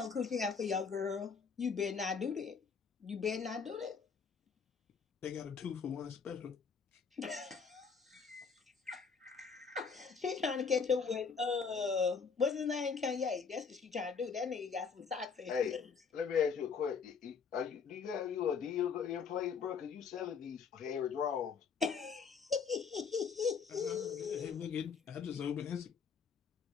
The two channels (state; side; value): quieter; right; 5.9 dB